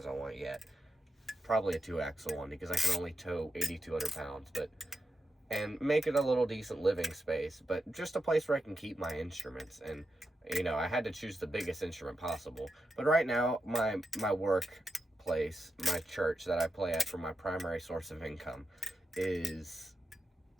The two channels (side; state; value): both; normal; correlation 0.87